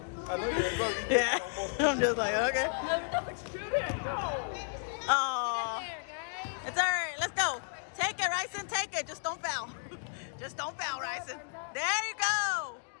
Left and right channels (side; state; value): right; silent; digital silence